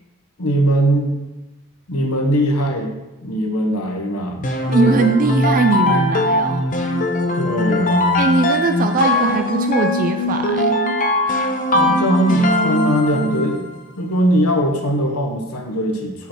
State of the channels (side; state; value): both; normal; correlation 0.37